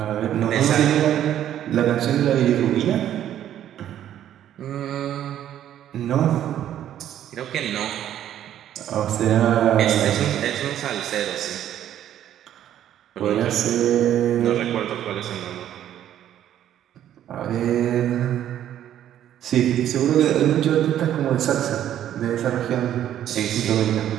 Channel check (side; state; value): left; quieter; 11.1 dB